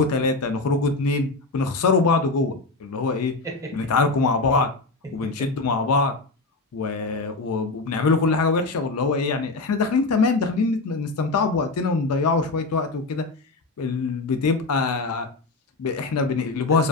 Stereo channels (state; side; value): quieter; right; 3.5 dB